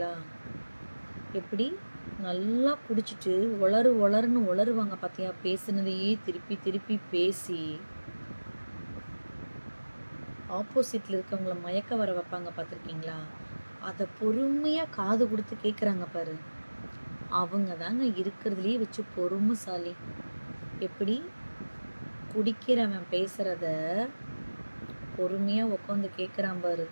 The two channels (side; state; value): both; inverted; correlation -1.00